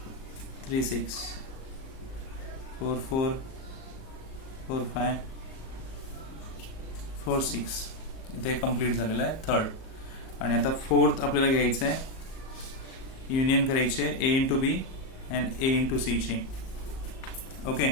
3 6 4 4 4 5 4 6. इथे कम्प्लीट झालेलं आहे थर्ड. आणि आता फोर्थ आपल्याला घ्यायचं आहे. युनियन करायचे A into B and A into C ची. ओके,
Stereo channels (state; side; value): late; right; 38 ms